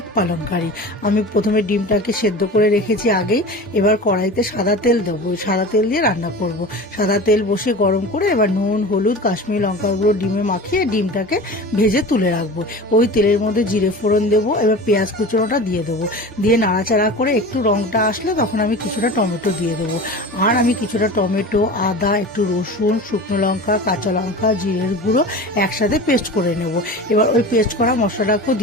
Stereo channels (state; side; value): normal; both; correlation 0.34